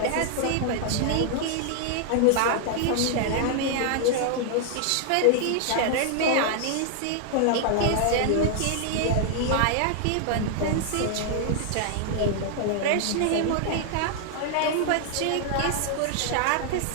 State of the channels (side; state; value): both; different; correlation 0.00